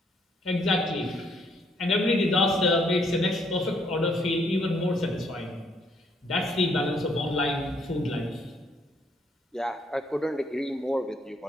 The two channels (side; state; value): both; normal; correlation 0.69